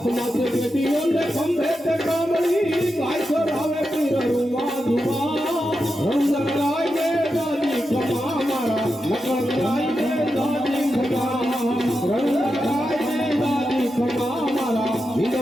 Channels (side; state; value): both; normal; correlation 0.88